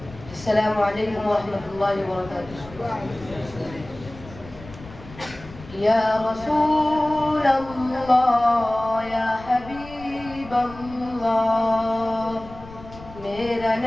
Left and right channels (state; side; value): noise; left; rumble, 17 dB below the sound